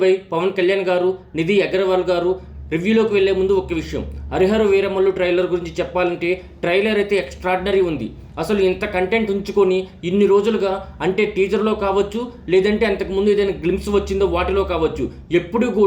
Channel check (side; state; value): both; identical; correlation 1.00